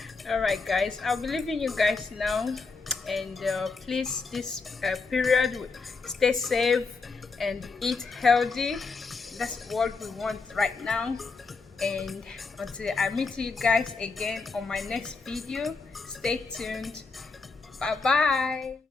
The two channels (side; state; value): right; quieter; 4.3 dB